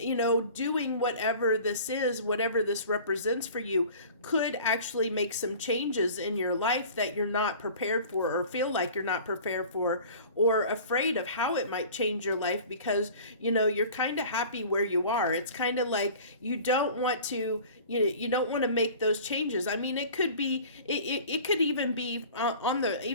doing whatever this is, whatever this represents for you, could actually make some changes in your life that you're not prepared for, or feel like you're not prepared for, or afraid of how it might change your life, because, you're kind of happy where you are. It's kind of like you don't want to, you don't want to make those changes. I mean, it could be, it could even be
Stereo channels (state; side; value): inverted; both; correlation -0.43